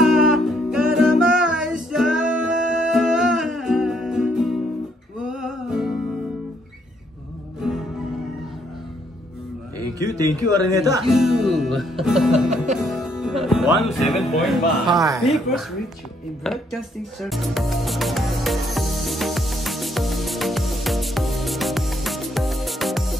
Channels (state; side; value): normal; both; correlation 0.70